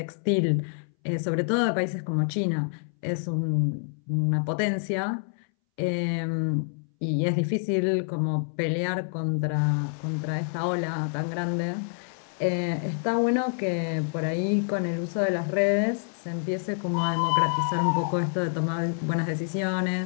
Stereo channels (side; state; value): right; silent; 60 dB below the other